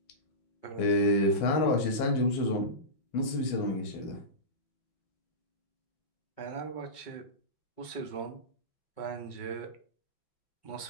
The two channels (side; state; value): right; late; 6.2 ms